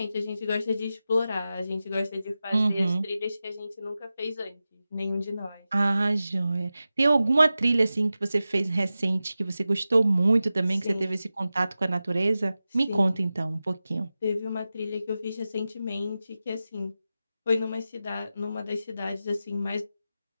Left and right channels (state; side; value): inverted; both; correlation -0.94